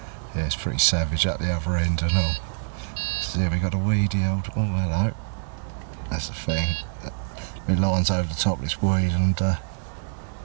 it's pretty savage at the other end and all. So yeah, we got a weedy old, oh hello, that's the thing. My line's over the top of this weed, and yeah,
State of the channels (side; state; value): left; silent; digital silence